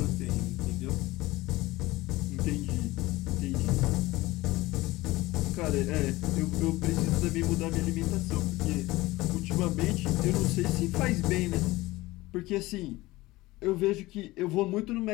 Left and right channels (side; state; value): right; quieter; 19.3 dB